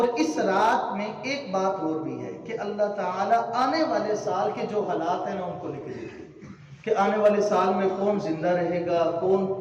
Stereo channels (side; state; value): both; identical; correlation 1.00